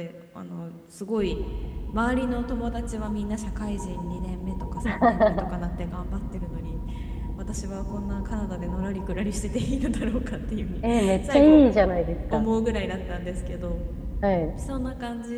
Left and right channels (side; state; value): both; identical; correlation 1.00